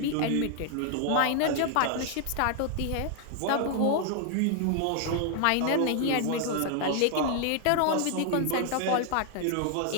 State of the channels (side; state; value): both; different; correlation 0.00